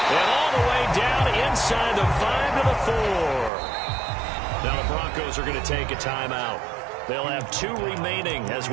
And all the way down inside the 5 to the 4. Now the Broncos are going to take a timeout. They'll have 2 remaining as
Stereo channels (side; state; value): left; drops out; at 3.5 s